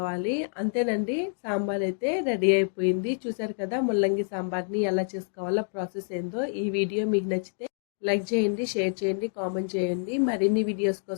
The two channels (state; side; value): silent; right; digital silence